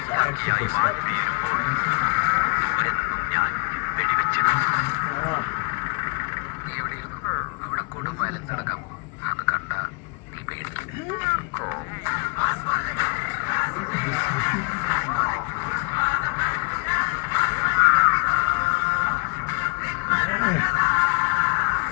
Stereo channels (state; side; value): quieter; right; 29.9 dB